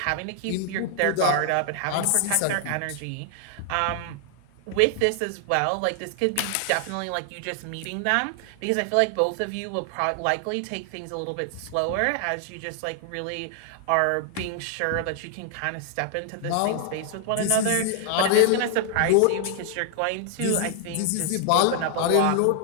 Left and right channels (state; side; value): different; both; correlation 0.00